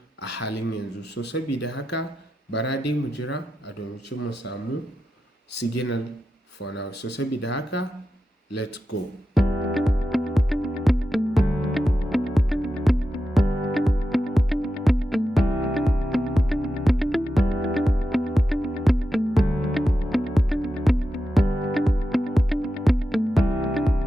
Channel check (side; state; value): both; normal; correlation 0.90